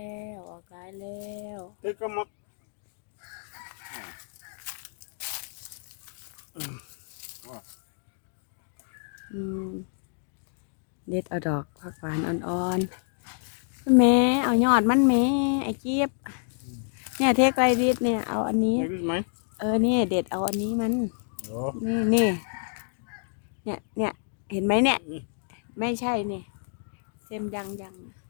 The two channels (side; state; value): right; silent; digital silence